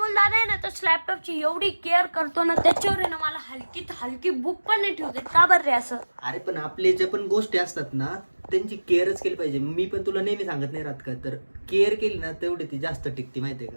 दादा आहे ना तो लॅपटॉपची एवढी केअर करतो ना, त्याच्यावर आहे ना मला हलकीत हलकी बुक पण नाही ठेवते. का बरं रे असं? अरे पण आपले जे पण गोष्टी असतात ना त्यांची केअरच केली पाहिजे. मी पण तुला नेहमी सांगत नाही राहत का, तर केअर केली ना तेवढी ती जास्त टिकते माहितीये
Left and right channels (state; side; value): inverted; both; correlation -1.00